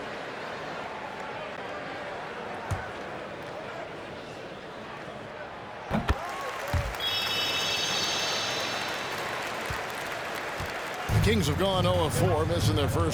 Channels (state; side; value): identical; both; correlation 1.00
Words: The Kings have gone 0 of 4, missing their